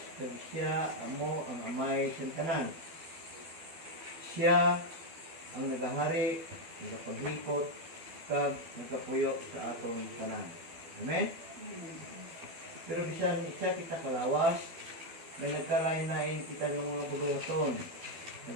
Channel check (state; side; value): late; left; 12 ms